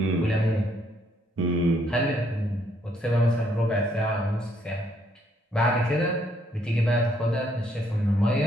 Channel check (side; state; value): both; normal; correlation 0.70